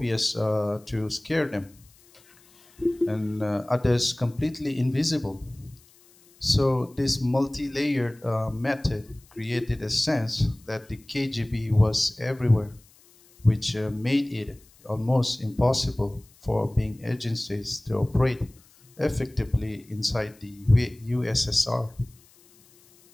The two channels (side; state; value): left; noise; hiss, 28 dB below the sound